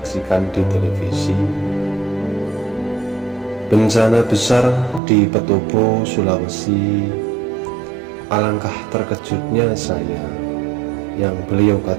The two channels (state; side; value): drops out; left; at 5.0 s